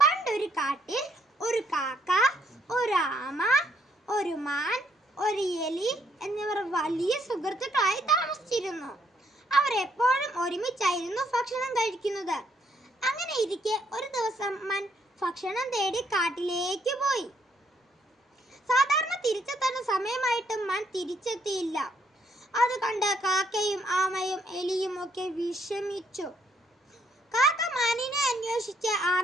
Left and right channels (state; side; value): normal; both; correlation 0.70